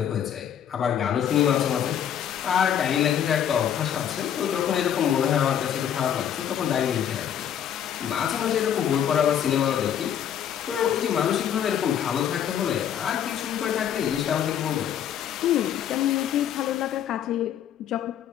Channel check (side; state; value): right; quieter; 9.5 dB